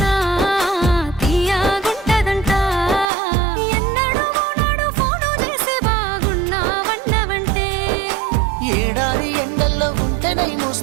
తీయగుంటదంట. ఎన్నడూ నాడు ఫోను చేసే బాగున్నావన్నవంటే ఏడాది ఎండల్లో ఉంటేనై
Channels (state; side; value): drops out; left; at 3.1 s